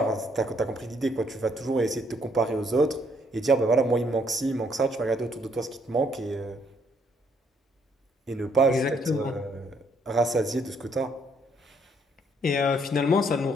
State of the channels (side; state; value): both; normal; correlation 0.69